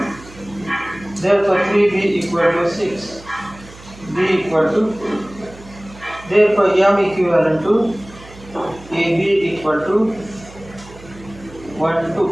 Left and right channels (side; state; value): right; noise; hum, 20 dB below the sound